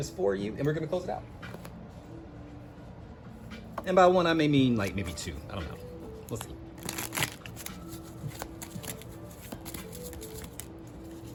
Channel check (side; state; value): both; identical; correlation 1.00